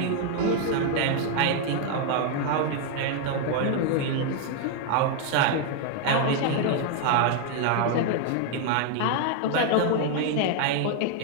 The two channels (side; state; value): both; different; correlation 0.00